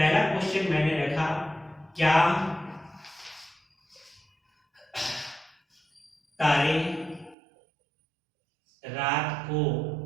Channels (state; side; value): drops out; left; at 7.4 s